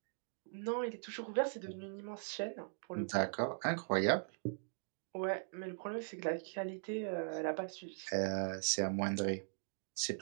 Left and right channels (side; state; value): left; silent; digital silence